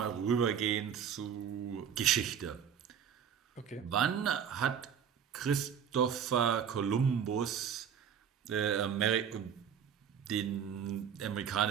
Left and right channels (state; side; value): quieter; left; 7.9 dB